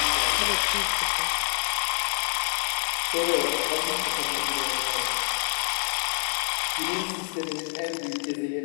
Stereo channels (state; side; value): silent; right; digital silence